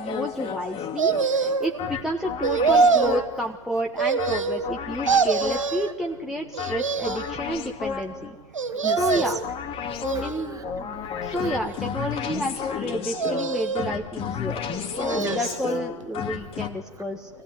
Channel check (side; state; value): both; normal; correlation 0.40